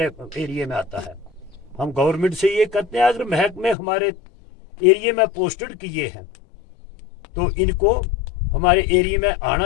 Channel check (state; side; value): drops out; right; at 3.8 s